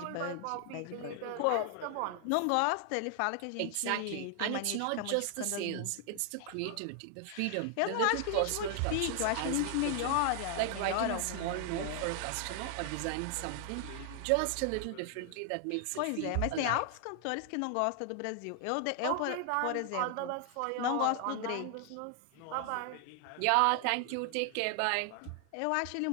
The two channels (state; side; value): different; both; correlation 0.00